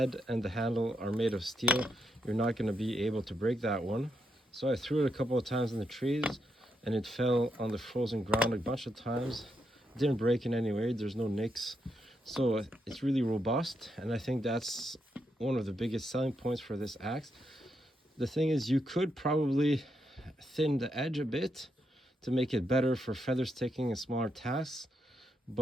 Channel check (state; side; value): normal; both; correlation 0.81